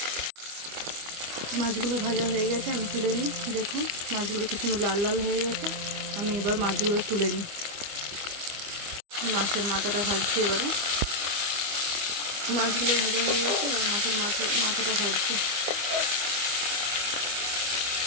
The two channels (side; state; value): left; late; 25 ms